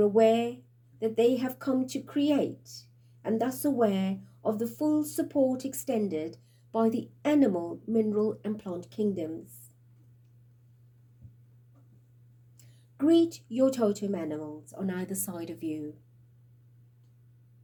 aware that they have come to create, and thus aware of the full support extended by the animal, mineral, and plant kingdoms. Greet your totem animals on either side of you,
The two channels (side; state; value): both; identical; correlation 1.00